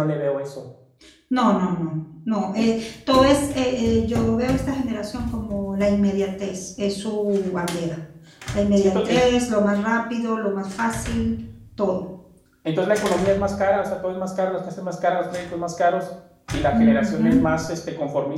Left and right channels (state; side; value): identical; both; correlation 1.00